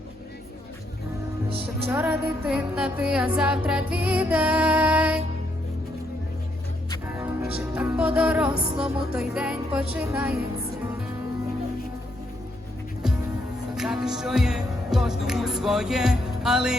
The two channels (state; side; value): normal; both; correlation 0.75